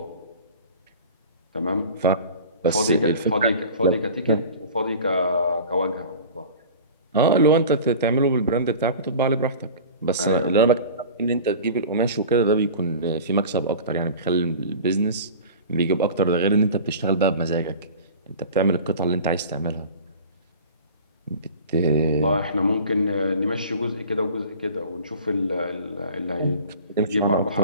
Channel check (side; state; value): both; inverted; correlation -0.39